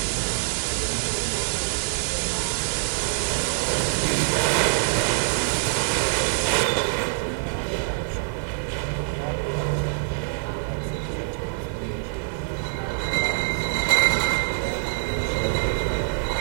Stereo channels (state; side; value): silent; left; digital silence